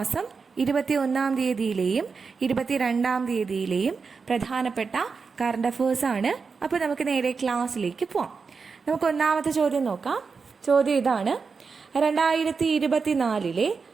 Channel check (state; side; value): quieter; left; 5.0 dB